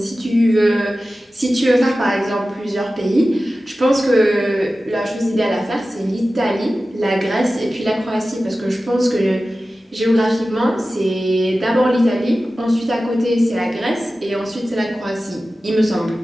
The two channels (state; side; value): normal; both; correlation 0.95